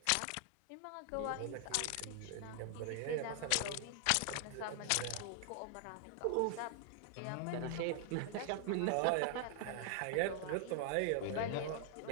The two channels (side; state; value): both; different; correlation 0.00